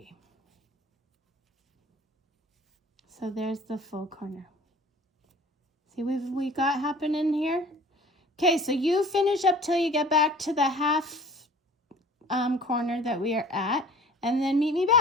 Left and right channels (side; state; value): both; normal; correlation 0.47